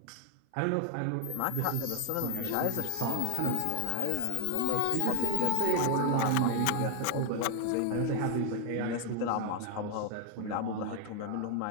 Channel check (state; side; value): different; both; correlation 0.00